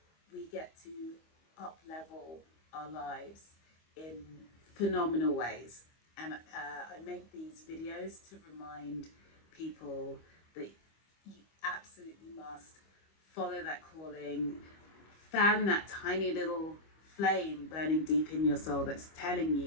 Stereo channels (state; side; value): late; right; 25 ms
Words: we get to up level our lives in phenomenal ways. And I make these videos to remind people that you absolutely must follow that calling, fan that tiny little flame burning deep in your soul that's telling